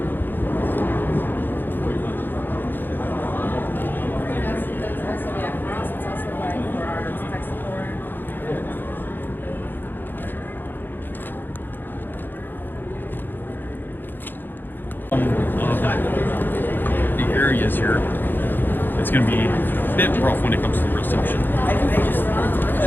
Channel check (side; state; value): right; late; 0.094 ms